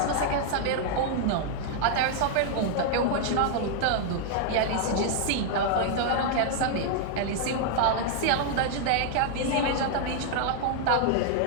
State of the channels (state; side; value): different; both; correlation 0.00